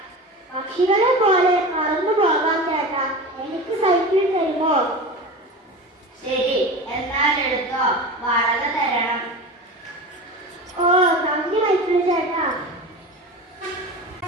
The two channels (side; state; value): both; normal; correlation 0.30